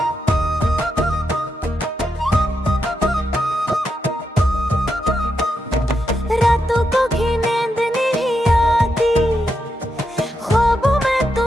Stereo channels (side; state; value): both; normal; correlation 0.83